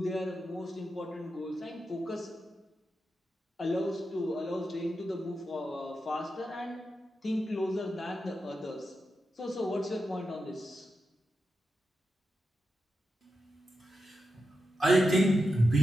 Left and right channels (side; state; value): both; normal; correlation 0.88